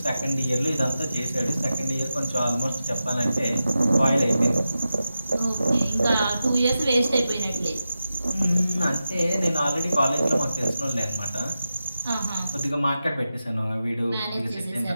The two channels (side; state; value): both; inverted; correlation -0.92